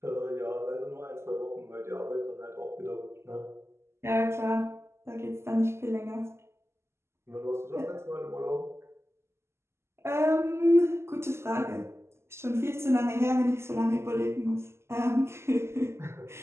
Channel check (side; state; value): left; late; 0.13 ms